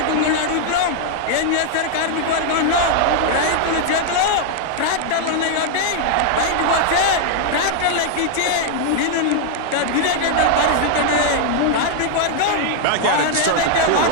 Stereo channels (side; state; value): both; different; correlation 0.00